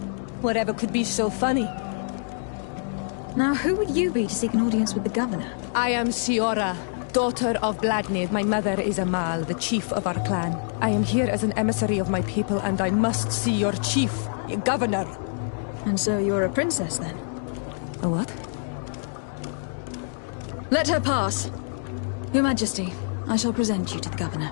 Whatever could be so funny? Now, who would you be to seek an audience with the governor? I am Siora, daughter of Bladnid. My mother is Amal, the chief of our clan. I am here as an emissary of my people, and I must see your chief, your governor. And so you're a princess, then? A what? Let her pass. Your Majesty, I shall present you to the governor.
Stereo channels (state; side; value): silent; right; digital silence